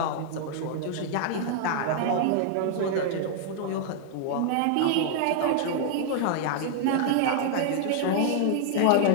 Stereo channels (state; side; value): different; both; correlation 0.00